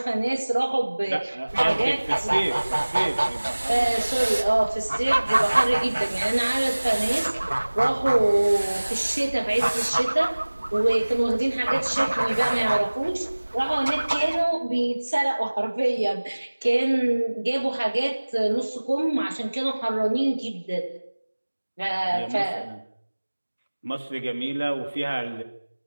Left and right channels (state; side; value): inverted; both; correlation -1.00